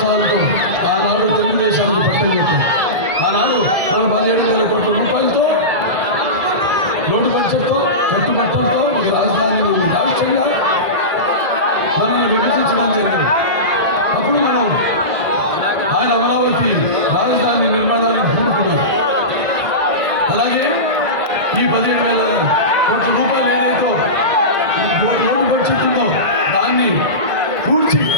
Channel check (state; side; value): late; left; 2.0 ms